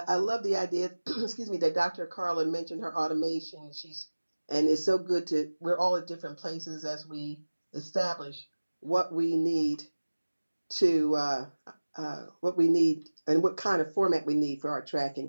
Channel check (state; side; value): inverted; both; correlation -1.00